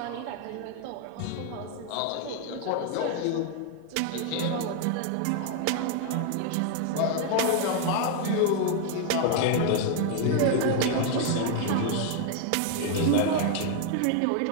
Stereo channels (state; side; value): different; both; correlation 0.00